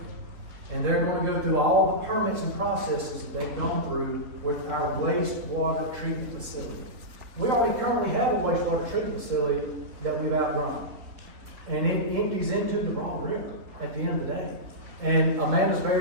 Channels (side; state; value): left; late; 4.0 ms